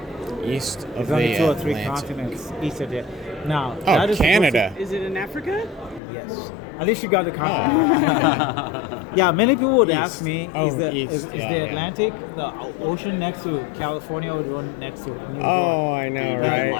East of There's only the 2 or 3 Atlantic. continents east of it. Now, Oh, that is Canada. Is it in Africa? Yes. At least you got the continent. Yeah, many people would ask me, is the Atlantic the ocean next to California or the one next to New York? Oh, I know,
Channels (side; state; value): right; drops out; at 6.0 s